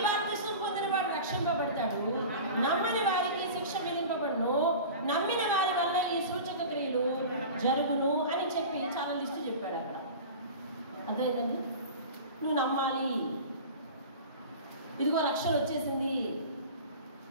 బాప్తిసం పొందిన వాడు రక్షింపబడతాడు, నమ్మని వారికి శిక్ష విధింపబడును, నమ్మిన వారి వల్ల ఈ సూచక క్రియలు జరుగును అని చెప్పి చాలా లిస్టు చెప్పాడు అక్కడ. అదేంటండి? నువ్వు నమ్మాలి. ఇదిగో రక్షణ వచ్చేసింది.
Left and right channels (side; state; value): both; inverted; correlation -0.35